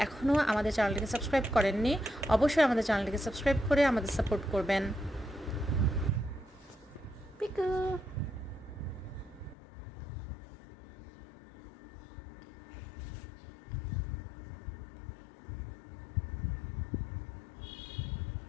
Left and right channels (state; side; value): drops out; right; at 9.6 s